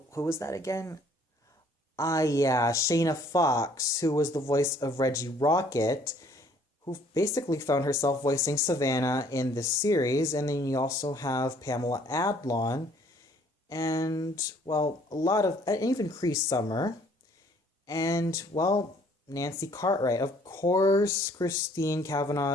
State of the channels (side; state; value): both; normal; correlation 0.60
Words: was that again? Ah, yeah, Shayna Fox, who was the voice of Reggie Rocket, who basically found herself voicing Savannah in this series. And then you also have Pamela Adlon, and, well, and even Cree Summer, and, well, Nancy Cartwright. Of course, Christine